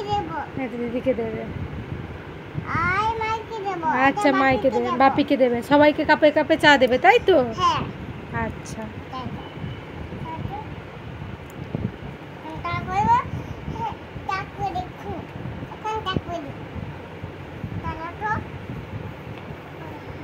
দিদিকে দেবে। আচ্ছা, মাইকে দেবে, বাপিকে দেবে, সবাইকে কাপে কাপে চা দেবে, তাই তো? আচ্ছা।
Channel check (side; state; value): both; identical; correlation 1.00